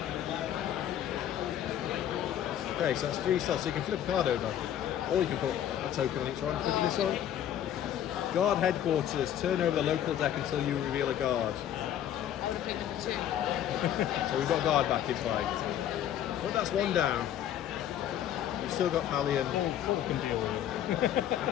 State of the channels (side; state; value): right; quieter; 10.8 dB